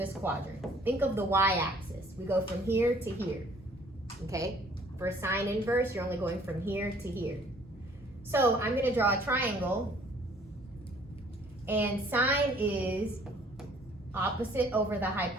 quadrant. Think of the y-axis. We go from here to here, okay? For sine inverse, you're only going from here to here. So I'm gonna draw a triangle, and sine is opposite over the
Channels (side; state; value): both; normal; correlation 0.58